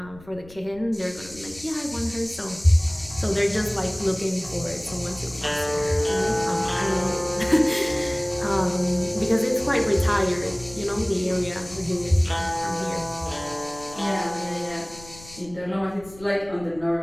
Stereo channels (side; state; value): left; noise; rumble, 20 dB below the sound